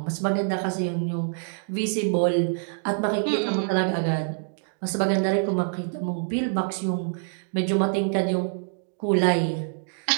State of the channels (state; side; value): silent; left; digital silence